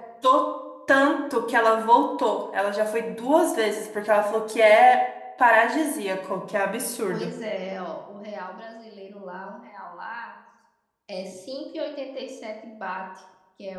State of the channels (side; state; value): both; identical; correlation 1.00